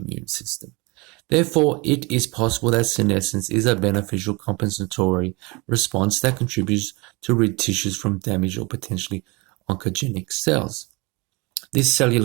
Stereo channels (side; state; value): left; quieter; 26.6 dB